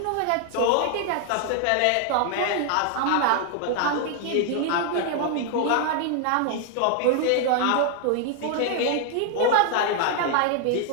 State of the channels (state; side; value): different; both; correlation 0.00